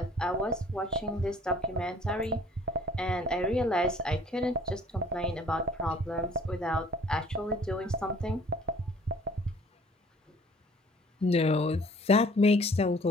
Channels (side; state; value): both; normal; correlation 0.54